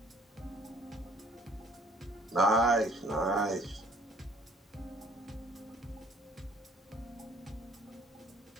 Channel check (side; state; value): both; normal; correlation 0.58